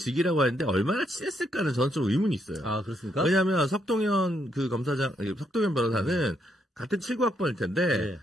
하는데, 얼마나 친했을까는 저는 좀 의문이 있어요. 그렇습니까? 왜냐면, 석동현 석동현 변호사는 같은 79학번일 텐데,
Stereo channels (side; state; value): both; normal; correlation 0.76